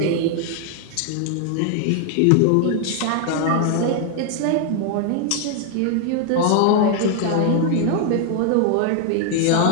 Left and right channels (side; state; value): both; different; correlation 0.00